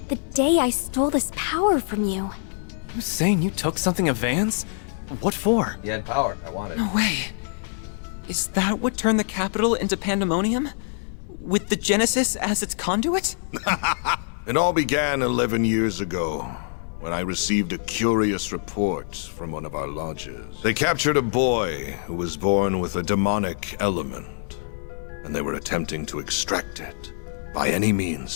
the day I stole this power from you? You saying you took something of Van's? What for? You had power. I wanted. No way. Is that what turned the capital into pandemonium? With the Genesis as its conduit? It all began 11 years ago, when I received a curious report from one of our lodges. They captured a boy who was born with a demonic element, and they were attempting to extract it by any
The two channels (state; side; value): silent; right; 62 dB below the other